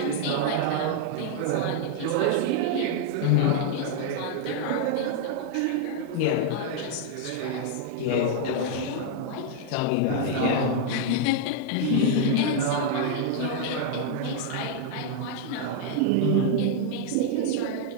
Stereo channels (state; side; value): different; both; correlation 0.00